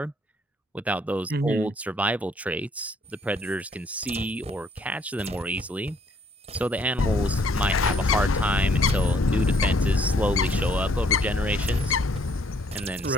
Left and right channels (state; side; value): normal; both; correlation 0.65